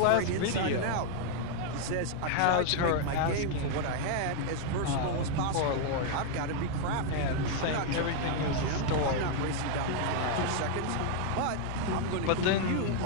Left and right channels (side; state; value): both; different; correlation 0.00